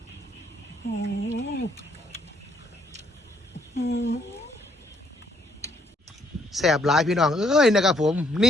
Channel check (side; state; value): both; normal; correlation 0.68